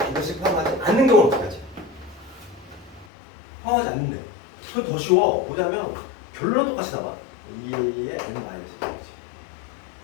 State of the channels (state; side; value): drops out; right; at 3.1 s